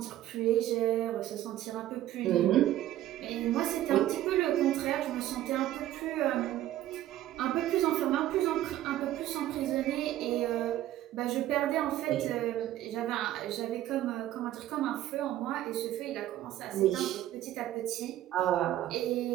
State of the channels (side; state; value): left; quieter; 13.5 dB